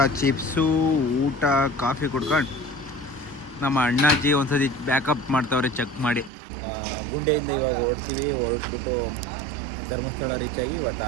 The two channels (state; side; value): drops out; left; at 6.3 s